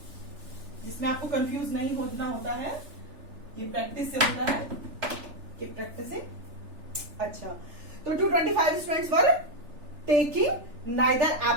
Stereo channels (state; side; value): late; left; 3.4 ms